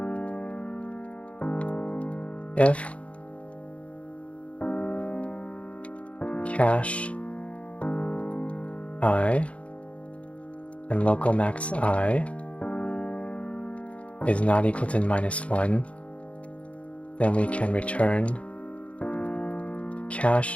If cache I and local max I is not equal to -1, then we can return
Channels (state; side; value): late; right; 0.063 ms